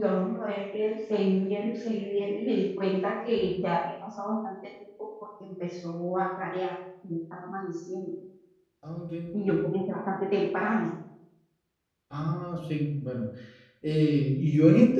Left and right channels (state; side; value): identical; both; correlation 1.00